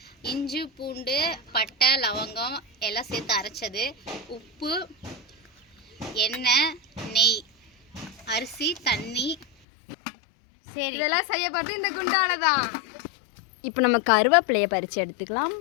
இஞ்சி, பூண்டு, பட்டை, லவங்கம் எல்லாம் சேர்த்து அரைச்சது, உப்பு, எண்ணெய், நெய், அரிசி, தண்ணி. சரி, இதெல்லாம் செய்ய பார்த்து இந்த குண்டால தான். இப்போ நம்ம கருவேப்பிலையை பறித்து எடுத்துக்கலாம்.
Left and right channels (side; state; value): right; drops out; at 9.5 s